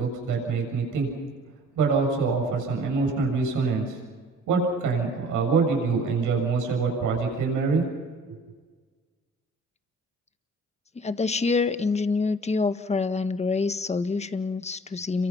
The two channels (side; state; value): both; normal; correlation 0.49